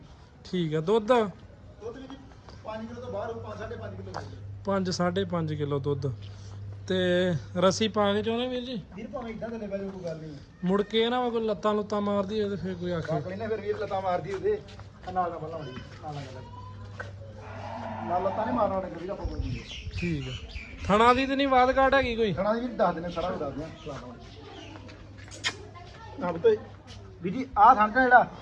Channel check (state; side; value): identical; both; correlation 1.00